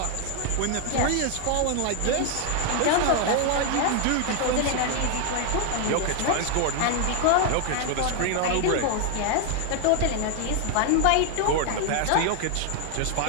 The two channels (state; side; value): different; both; correlation 0.00